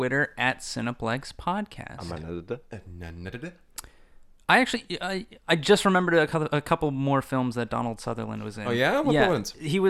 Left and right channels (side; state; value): both; identical; correlation 1.00